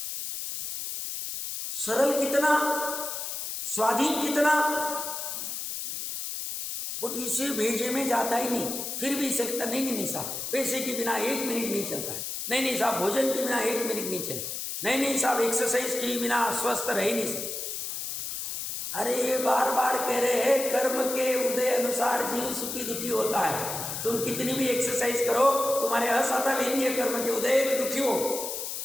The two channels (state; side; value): noise; left; hiss, 5 dB below the sound